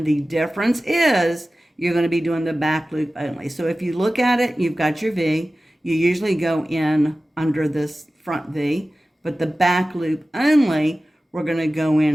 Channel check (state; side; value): normal; both; correlation 0.96